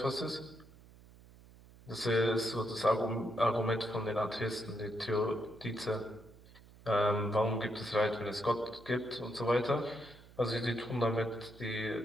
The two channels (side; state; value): right; noise; hum, 22 dB below the sound